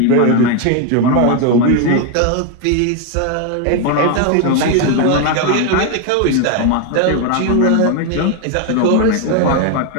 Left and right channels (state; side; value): different; both; correlation 0.01